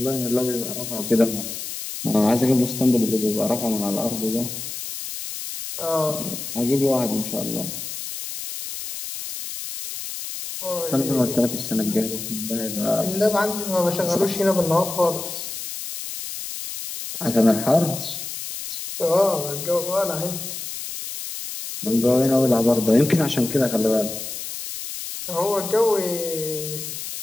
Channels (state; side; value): noise; left; hiss, 7 dB below the sound